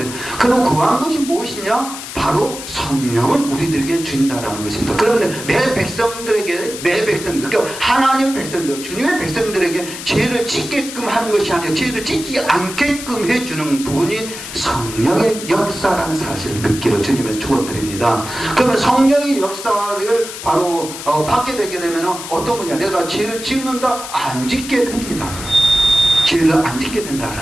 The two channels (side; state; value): left; noise; hiss, 10 dB below the sound